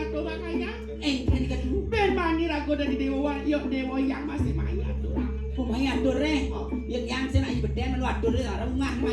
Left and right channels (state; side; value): identical; both; correlation 1.00